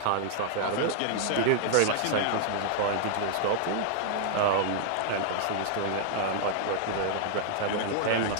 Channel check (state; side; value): different; both; correlation -0.01